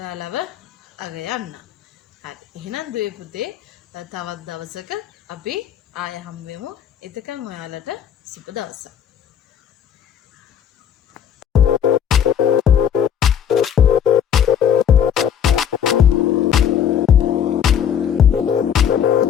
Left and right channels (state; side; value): quieter; right; 8.7 dB